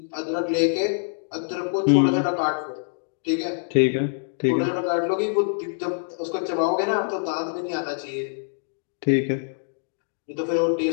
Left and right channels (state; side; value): silent; right; digital silence